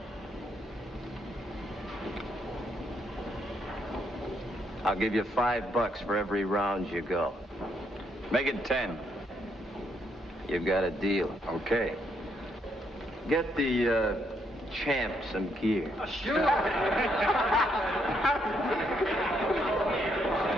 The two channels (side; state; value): both; normal; correlation 0.74